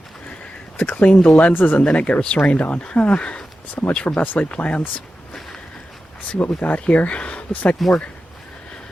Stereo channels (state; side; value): normal; both; correlation 0.92